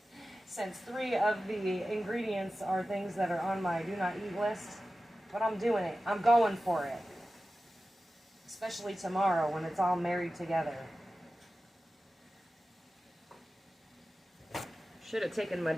since 3 of the ingredients are things that are on my do not eat list. But I'm doing it. I'm going for it. Especially tomorrow when it's all married together. Should have taken my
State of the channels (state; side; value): normal; both; correlation 0.94